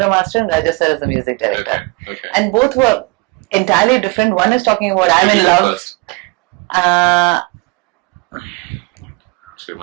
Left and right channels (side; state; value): left; quieter; 26.5 dB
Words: Master and Raja sir as the music director. Okay. And both were entirely different. One is talking about I'm in love. Do you